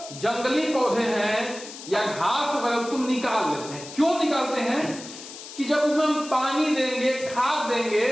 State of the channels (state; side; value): noise; left; hiss, 14 dB below the sound